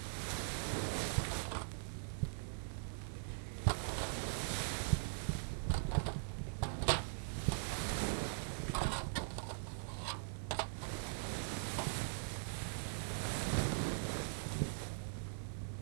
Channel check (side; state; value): left; silent; digital silence